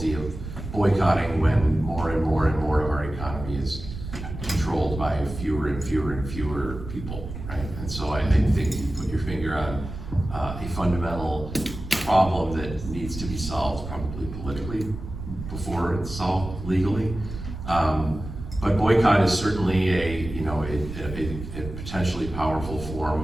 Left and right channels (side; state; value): right; noise; rumble, 9 dB below the sound